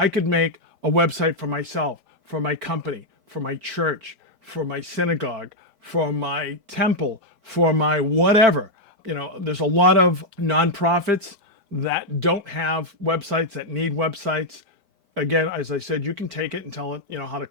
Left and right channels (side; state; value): left; late; 5.0 ms